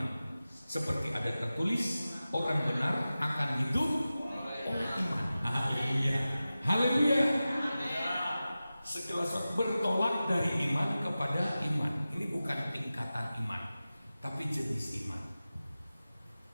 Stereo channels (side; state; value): both; inverted; correlation -0.95